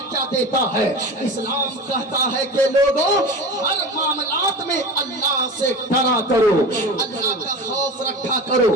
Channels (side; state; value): both; normal; correlation 0.31